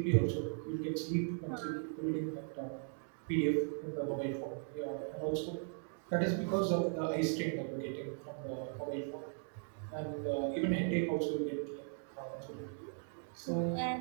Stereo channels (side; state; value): left; silent; 52 dB below the other